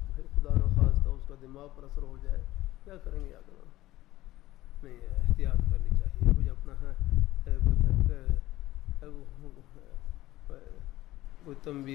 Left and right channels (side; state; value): right; quieter; 16.3 dB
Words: پھر خدا نخواستہ اس کا دماغ پر اثر ہو جائے، کیا کریں گے؟ یاد نہیں، احتیاط کرنی چاہیے۔ کچھ اپنا ہے کوئی